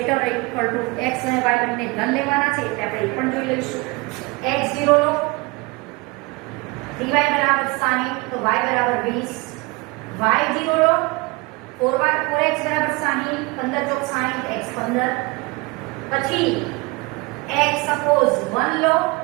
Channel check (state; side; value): quieter; left; 25.8 dB